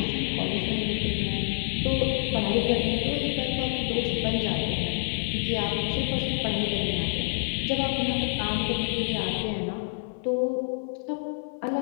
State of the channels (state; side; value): silent; right; 60 dB below the other